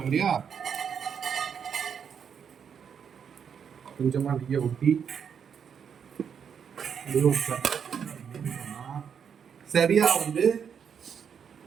இல்லையா? கொஞ்சமா நெய்யை ஊற்றி சரியா வந்து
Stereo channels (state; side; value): quieter; left; 7.4 dB